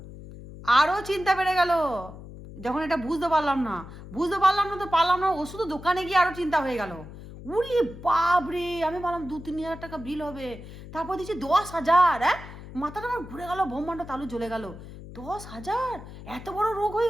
আরও চিন্তা বেড়ে গেল যখন এটা বুঝতে পারলাম না। তো পারলাম না, ওষুধ দোকানে গিয়ে আরও চিন্তা হয়ে গেল। উরি বাপ রে, আমি ভাবলাম 2-3 হাজার টাকা বিল হবে, তারপর দিচ্ছি 10,000। হ্যাঁ, মাথাটা আমার ঘুরে গেল, ব্রহ্মাণ্ড তালু জ্বলে গেল। 10,000, এত বড় রোগ হয়ে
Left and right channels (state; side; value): noise; left; hum, 14 dB below the sound